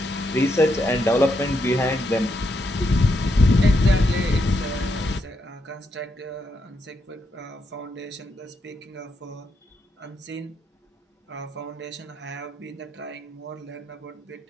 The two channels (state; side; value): normal; both; correlation 0.80